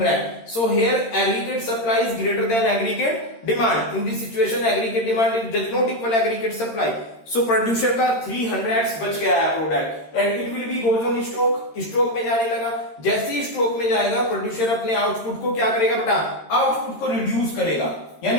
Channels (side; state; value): right; late; 13 ms